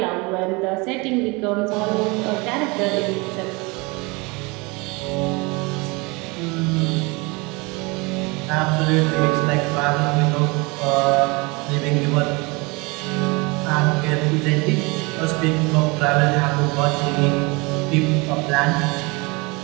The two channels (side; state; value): left; quieter; 26.8 dB